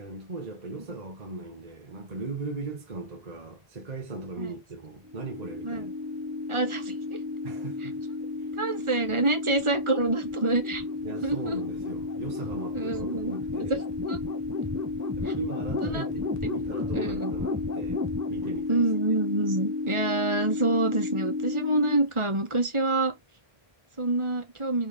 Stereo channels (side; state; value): left; late; 1.4 ms